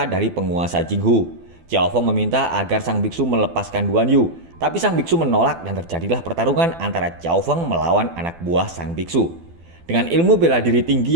dari penguasa Jinghu. Xiao Feng meminta agar sang biksu melepaskan Duan Yu. Tapi sang biksu menolak dan terjadilah pertarungan antara Xiao Feng melawan anak buah sang biksu. Dengan ilmu bela diri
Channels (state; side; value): late; left; 12 ms